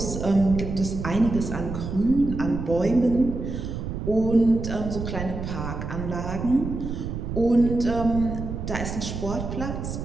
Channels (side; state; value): right; noise; rumble, 5 dB below the sound